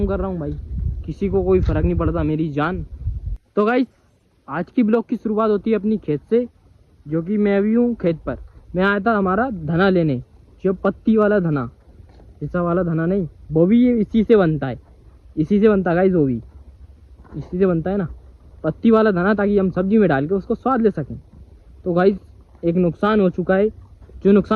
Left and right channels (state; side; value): identical; both; correlation 1.00